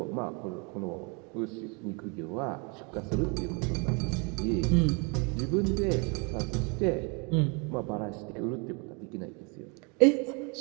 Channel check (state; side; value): quieter; left; 32.6 dB